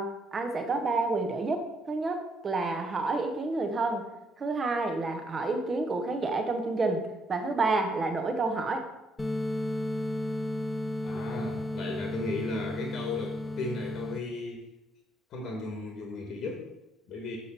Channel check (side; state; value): both; normal; correlation 0.74